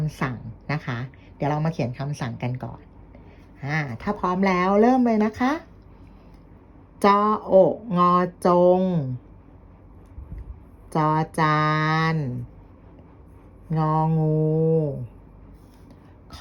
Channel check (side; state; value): both; identical; correlation 1.00